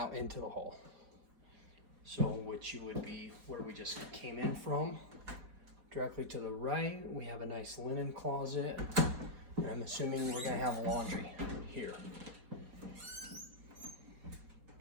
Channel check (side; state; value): left; late; 4.8 ms